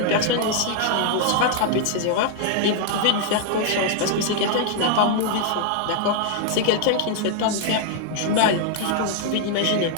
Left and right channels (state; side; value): different; both; correlation -0.01